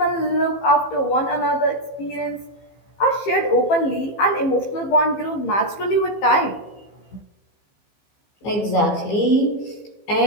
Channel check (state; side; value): late; right; 15 ms